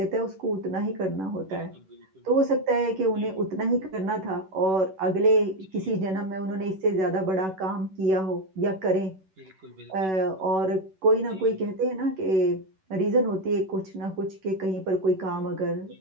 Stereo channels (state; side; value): late; left; 11 ms